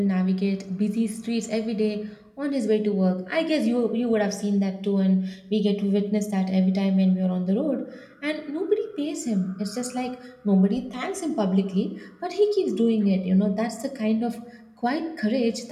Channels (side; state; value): both; identical; correlation 1.00